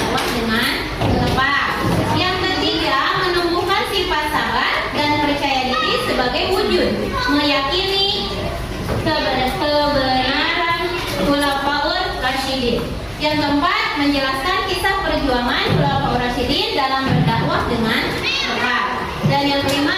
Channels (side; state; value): both; identical; correlation 1.00